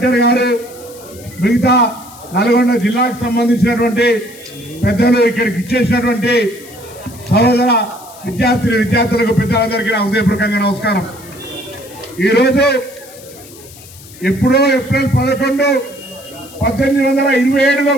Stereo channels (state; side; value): noise; left; hiss, 20 dB below the sound